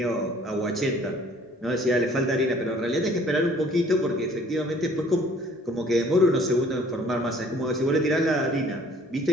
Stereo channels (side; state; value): both; normal; correlation 0.55